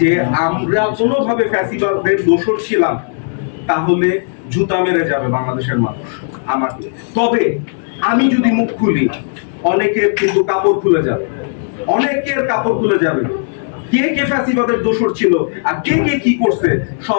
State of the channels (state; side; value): silent; right; digital silence